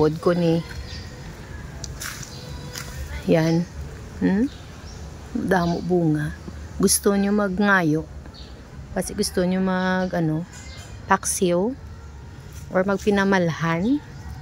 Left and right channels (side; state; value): both; identical; correlation 1.00